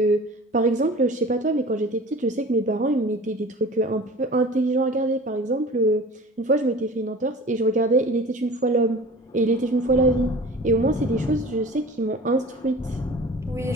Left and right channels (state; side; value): normal; both; correlation 0.41